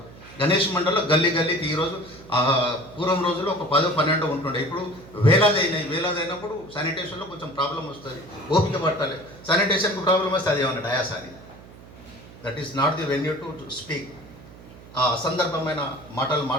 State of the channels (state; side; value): noise; right; hum, 19 dB below the sound